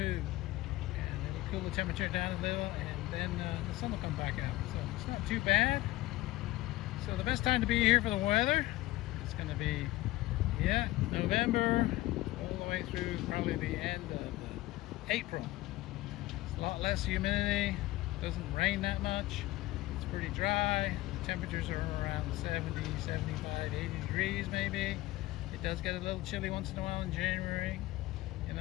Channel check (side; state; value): right; quieter; 17.8 dB